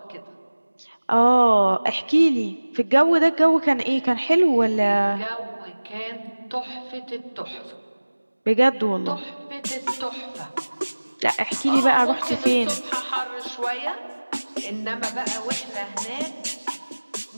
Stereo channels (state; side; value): inverted; both; correlation -1.00